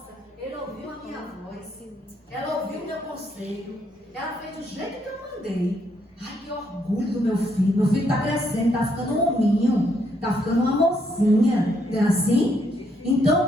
ele ouviu a minha voz, ela ouviu o meu conselho, ela fez do jeito que eu mandei. Ai, que orgulho do meu filho está crescendo, está ficando um hominho, está ficando uma mocinha, não é assim?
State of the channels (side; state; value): both; normal; correlation 0.74